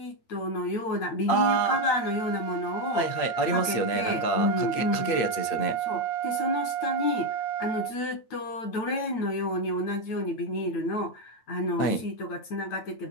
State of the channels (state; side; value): late; right; 8.6 ms